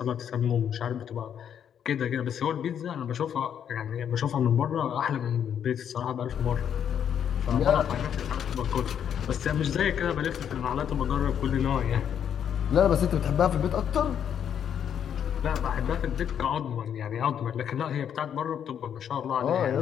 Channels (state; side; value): quieter; right; 8.8 dB